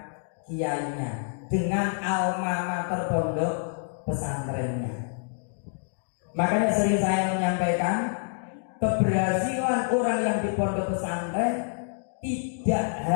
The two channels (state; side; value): silent; right; digital silence